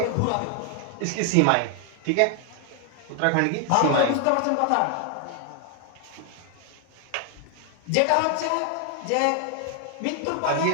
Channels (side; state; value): both; different; correlation 0.00